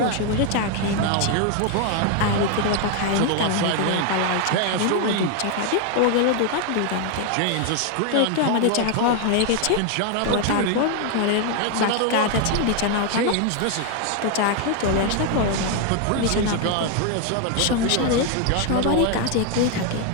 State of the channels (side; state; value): both; different; correlation 0.01